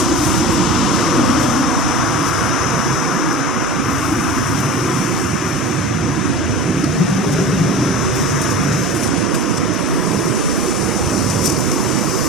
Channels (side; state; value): both; normal; correlation 0.34